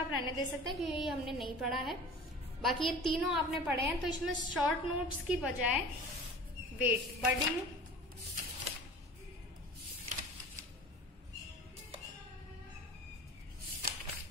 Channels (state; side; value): normal; both; correlation 0.40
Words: रहने दे सकते हैं क्योंकि ये हमने नहीं पढ़ा है, बाकी ये तीनों आपने पढ़े हैं। तो इसमें शॉर्ट नोट्स की बजाय वेट, बडिंग,